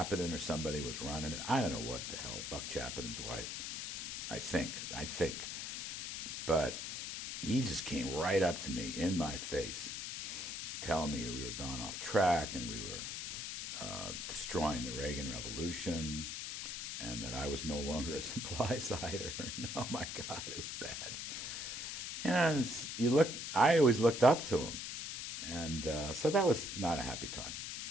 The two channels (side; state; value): left; noise; hiss, 5 dB below the sound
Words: or somebody was running it. I don't know what the hell, Buck Chapman's wife, I think. But he just came right up to me in my face, telling me we were gone off track and we were destroying the Reagan Revolution, and that I was no longer a supply sider. Oh my God, it was bad. And I always looked up to him, and so that was not a happy time